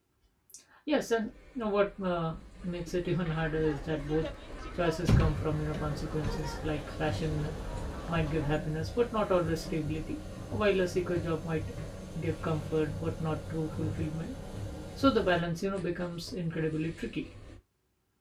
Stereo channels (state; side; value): identical; both; correlation 1.00